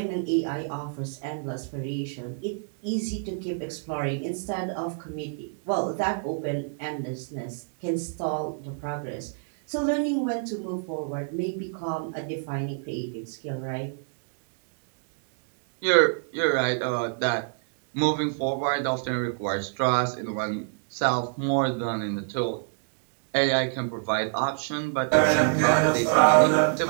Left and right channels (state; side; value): silent; left; 60 dB below the other